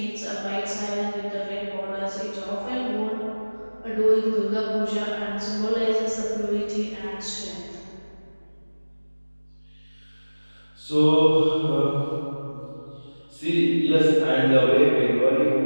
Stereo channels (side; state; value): both; inverted; correlation -1.00